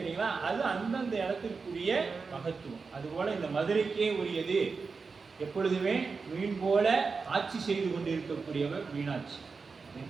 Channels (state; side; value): quieter; left; 4.7 dB